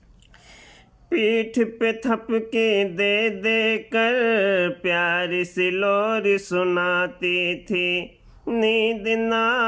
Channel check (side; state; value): both; identical; correlation 1.00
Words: पीठ पे थपके दे दे कर प्यारी सी लोरी सुनाती थी। नींद न